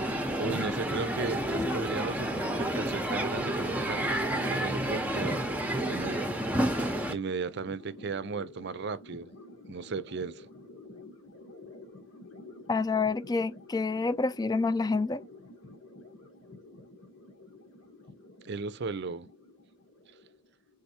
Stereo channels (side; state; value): both; normal; correlation 0.57